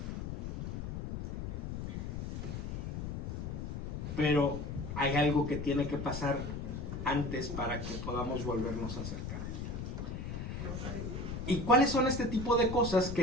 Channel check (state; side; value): noise; left; rumble, 5 dB below the sound